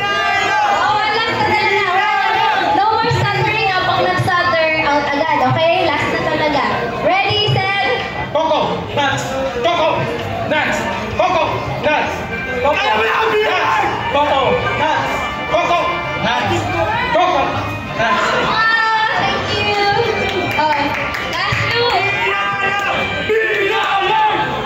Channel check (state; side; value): identical; both; correlation 1.00